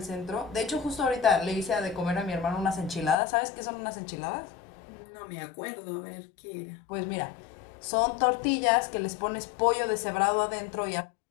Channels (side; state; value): right; drops out; at 3.2 s